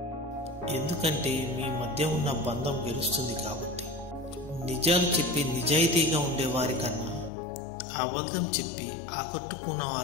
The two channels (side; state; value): right; drops out; at 7.3 s